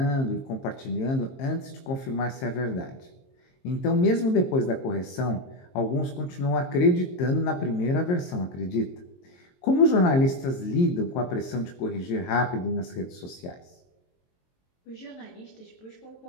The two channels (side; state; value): right; late; 22 ms